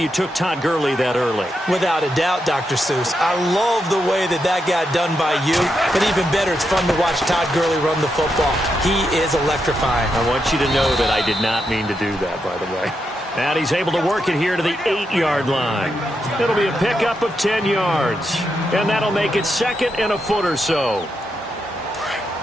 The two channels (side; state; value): both; normal; correlation 0.84